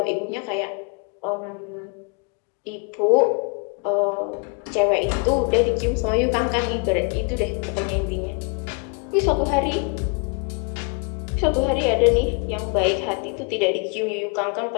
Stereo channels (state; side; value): quieter; right; 34.5 dB